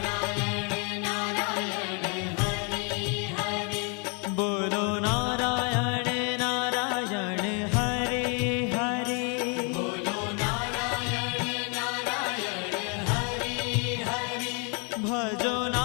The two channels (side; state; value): right; quieter; 35.8 dB